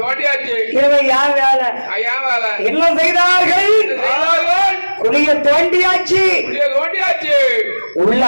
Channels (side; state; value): both; inverted; correlation -1.00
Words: இரவு யார் வேலை என்ன செய்தார்கள்? குளிய தோண்டியாச்சு உள்ள